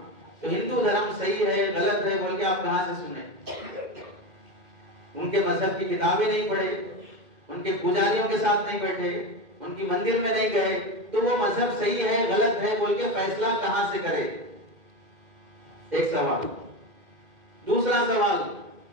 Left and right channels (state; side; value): late; left; 2.1 ms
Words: تو ہندو دھرم صحیح ہے غلط ہے بول کے آپ کہاں سے سنیں؟ ان کے مذہب کی کتابیں نہیں پڑھے، ان کے پجاریوں کے ساتھ نہیں بیٹھے، ان کی مندر میں نہیں گئے، تو وہ مذہب صحیح ہے غلط ہے بول کے فیصلہ کہاں سے کرے؟ ایک سوال۔ دوسرا سوال،